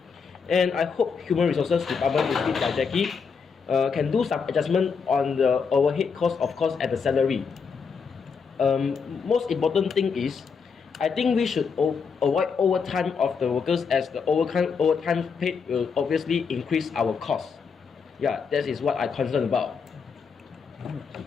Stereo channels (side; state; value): right; quieter; 5.7 dB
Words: and I hope Human Resources Department, lead by Jackie, can do some adjustment on the overhead cost, of course, at the salary. Most important thing is, I think we should avoid overtime of the workers, as the overtime paid will obviously increase our costs. Yeah, that is what I'm concerned about.